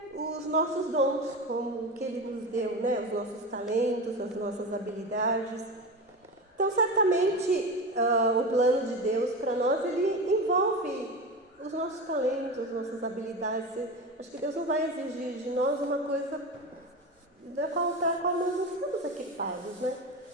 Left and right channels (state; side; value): normal; both; correlation 0.25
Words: os nossos dons, como que Ele nos deu, né? Os nossos talentos, as nossas habilidades. Então, certamente, o plano de Deus para nós, ele envolve os nossos talentos, as nossas habilidades. Acho que Deus não vai exigir de nós uma coisa da qual nós não estamos equipados, né?